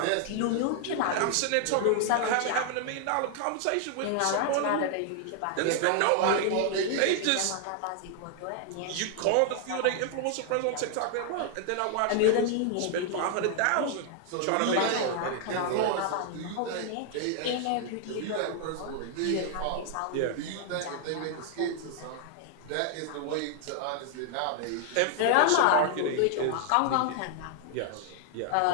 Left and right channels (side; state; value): both; different; correlation 0.00